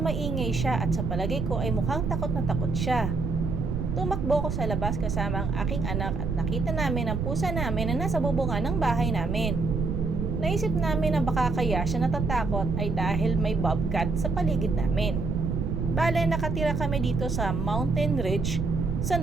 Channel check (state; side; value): noise; right; rumble, 1 dB below the sound